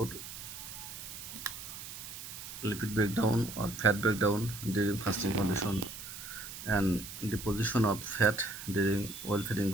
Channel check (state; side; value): noise; right; hiss, 10 dB below the sound